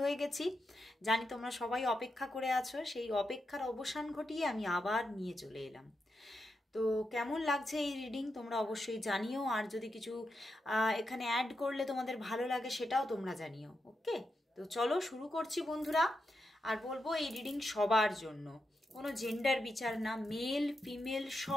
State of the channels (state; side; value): normal; both; correlation 0.86